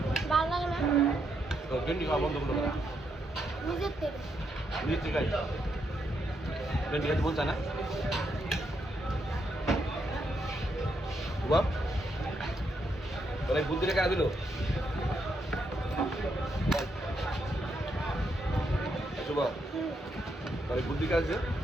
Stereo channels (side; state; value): both; normal; correlation 0.79